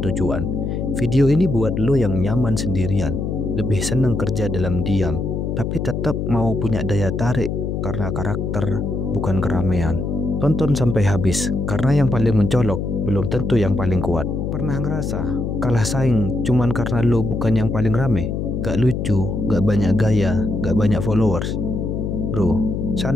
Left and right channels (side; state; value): left; noise; hum, 2 dB below the sound